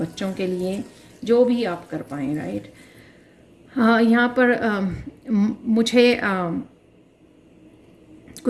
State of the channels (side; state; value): both; identical; correlation 1.00